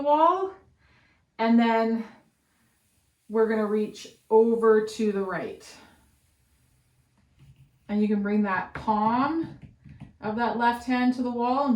wall, and then we're gonna reach over to the right. And you can bring that palm of that left hand to the wall and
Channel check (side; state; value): both; identical; correlation 1.00